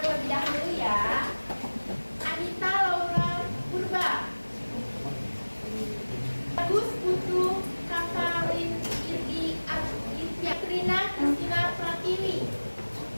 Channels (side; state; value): both; inverted; correlation -1.00